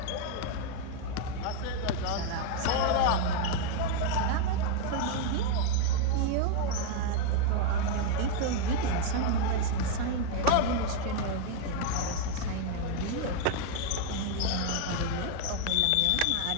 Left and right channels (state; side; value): different; both; correlation 0.01